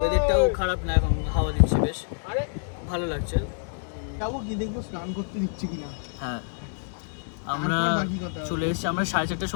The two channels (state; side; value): silent; right; digital silence